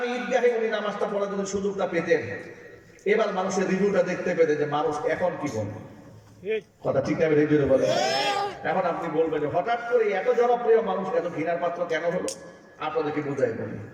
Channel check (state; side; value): identical; both; correlation 1.00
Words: ঈদগাহে উনি নামাজটা পড়ার জন্য সুযোগটা পেতেন, এবার মানুষের রিভিউটা দেখতে পেতে যে মানুষ এখন কি বলে। কথা ঠিক না ঠিক বলে? এখন আপনি বলবেন যে হঠাৎ করে এত জনপ্রিয় মানুষ এত ঘৃণার পাত্র কেন হলো? আপনাদেরকে বুঝাই বলি।